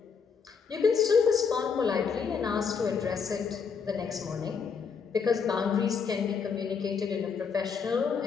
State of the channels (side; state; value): right; quieter; 6.0 dB